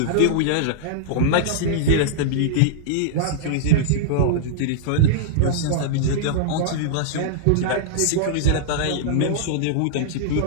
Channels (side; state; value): both; different; correlation -0.02